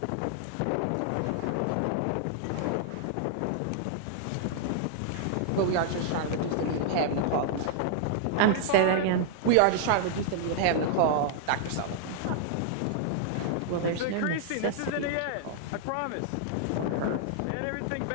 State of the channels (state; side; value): different; both; correlation -0.01